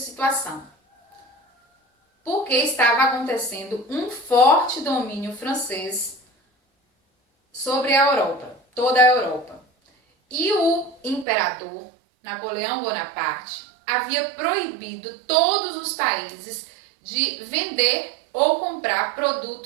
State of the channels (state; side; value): drops out; left; at 11.2 s